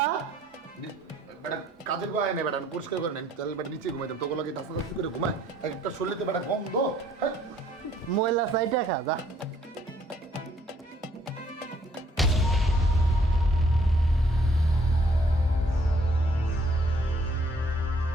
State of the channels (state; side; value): normal; both; correlation 0.63